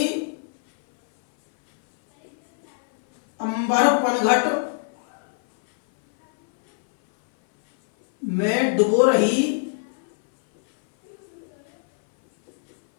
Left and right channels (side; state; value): right; silent; 59 dB below the other